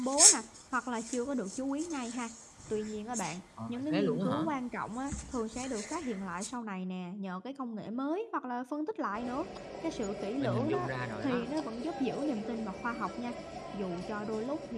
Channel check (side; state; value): both; identical; correlation 1.00